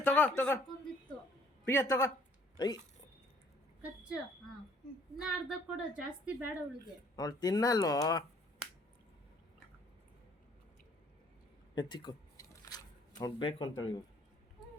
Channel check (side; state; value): both; normal; correlation 0.59